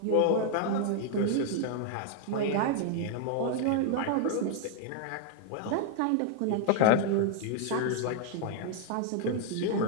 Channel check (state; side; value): different; both; correlation 0.00